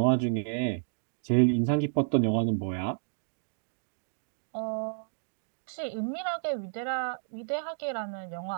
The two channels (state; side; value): silent; left; digital silence